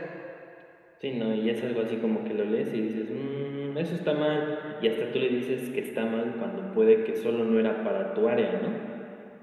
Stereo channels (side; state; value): both; identical; correlation 1.00